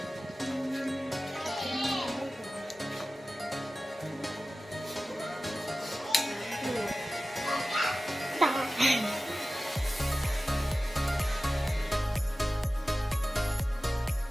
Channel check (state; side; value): normal; both; correlation 0.95